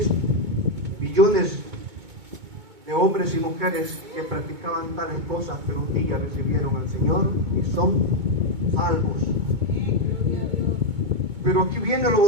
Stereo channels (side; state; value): left; late; 2.2 ms